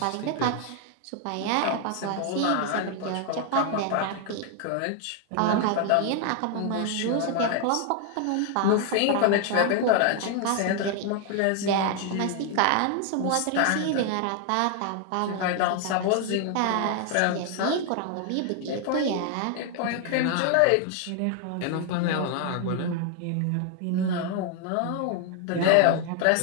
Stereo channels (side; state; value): both; different; correlation 0.00